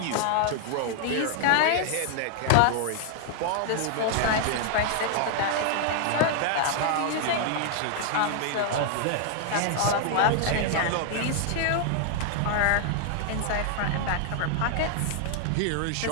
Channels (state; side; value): different; both; correlation 0.00